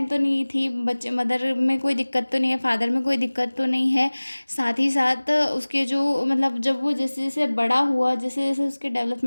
तो नहीं थी, बच्चे मदर में कोई दिक्कत तो नहीं है, फादर में कोई दिक्कत तो नहीं है। साथ ही साथ उसके जो मतलब जब वो जैसे जैसे बड़ा हुआ, जैसे जैसे उसके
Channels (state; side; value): inverted; both; correlation -1.00